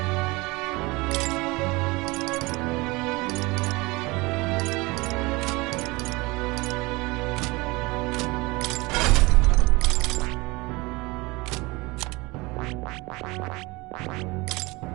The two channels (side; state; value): left; quieter; 23.7 dB